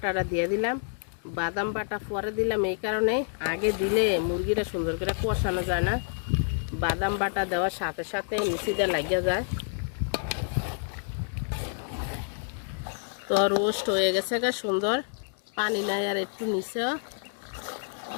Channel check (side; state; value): right; silent; digital silence